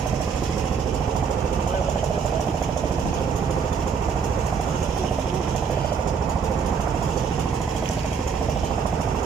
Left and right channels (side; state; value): left; quieter; 6.3 dB